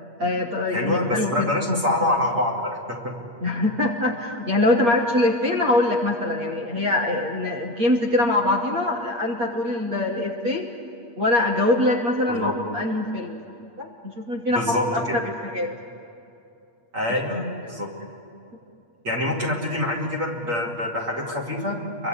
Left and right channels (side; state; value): left; late; 8.5 ms